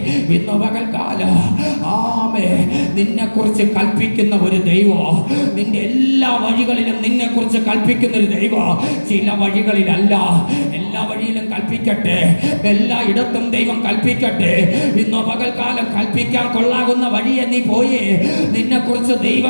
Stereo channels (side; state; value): both; inverted; correlation -1.00